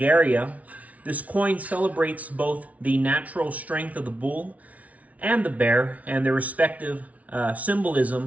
this coin celebrates both the natural strength of the bull and the bear and their respective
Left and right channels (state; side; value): late; left; 0.069 ms